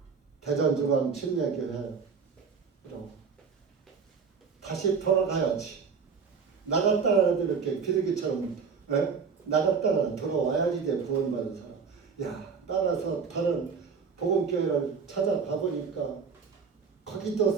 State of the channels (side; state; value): left; quieter; 5.7 dB